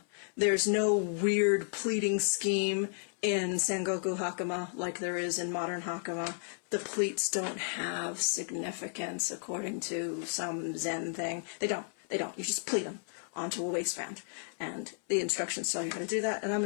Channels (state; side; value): silent; right; 56 dB below the other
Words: There's no weird pleating scheme in Sengoku Hakama like there is in modern Hakama. The pleats don't have significance according to some Zen thing. They don't. They don't. You just pleat them onto a waistband. And the instructions tell you how to do that, and I'm